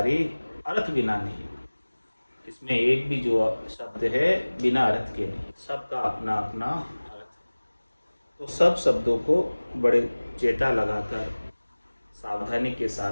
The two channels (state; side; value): inverted; both; correlation -1.00